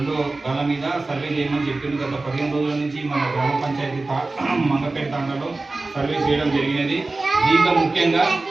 గల మీద సర్వే చేయమని చెప్పింది. గత 15 రోజుల నుంచి మన గ్రామ పంచాయతీ మంగపేట తాండాలో సర్వే చేయడం జరిగినది. దీంట్లో ముఖ్యంగా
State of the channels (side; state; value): left; quieter; 3.3 dB